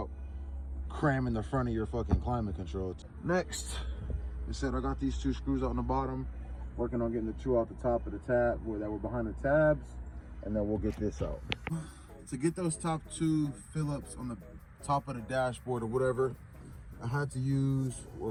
cramming the front of your fucking climate control. Next, I said I got these 2 screws out on the bottom. Working on getting the two out the top of the tab, that were behind the tabs, and then we'll get this out. To get those top two Phillips on the top of the dashboard or whatever, I had to use,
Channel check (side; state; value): both; identical; correlation 1.00